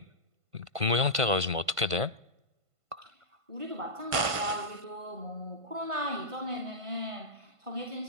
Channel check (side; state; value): left; late; 1.5 ms